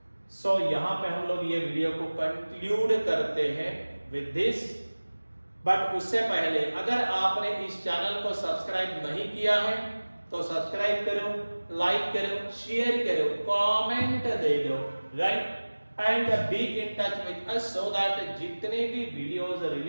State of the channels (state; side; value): inverted; both; correlation -1.00